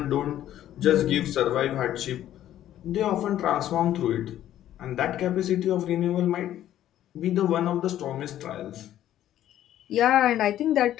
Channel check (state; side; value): quieter; right; 12.2 dB